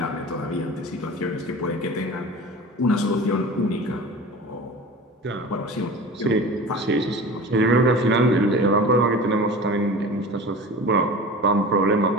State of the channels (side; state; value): both; normal; correlation 0.36